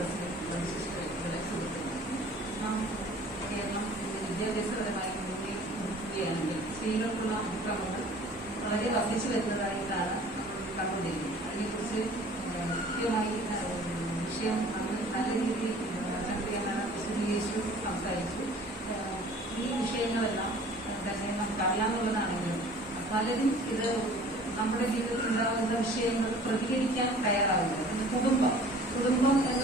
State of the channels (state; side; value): normal; both; correlation 0.48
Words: വിദ്യാഭ്യാസപരമായി നോക്കുകയാണെങ്കിൽ സ്ത്രീകൾക്കുള്ള അതിക്രമങ്ങൾ വളരെ വർദ്ധിച്ചു വരുന്നതായിട്ടാണ് കണ്ടുകൊണ്ടിരിക്കുന്നത്. അതിനെക്കുറിച്ച് കൃത്യമായി വിഷയം നല്ല രീതിയിൽ വിശദീകരിച്ചു സംസാരിച്ചു. ഈ വിഷയങ്ങളെല്ലാം തന്നെ നമുക്ക് അറിയാവുന്നതാണെങ്കിലും പലരും ഇത് നമ്മുടെ ജീവിതത്തിൽ ഉണ്ടാകുന്ന വിഷയങ്ങൾ പ്രതികരിക്കാൻ തയ്യാറാവില്ല. കുടുംബം